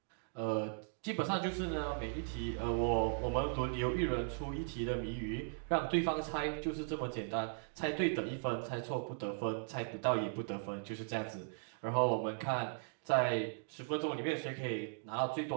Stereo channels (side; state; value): left; silent; digital silence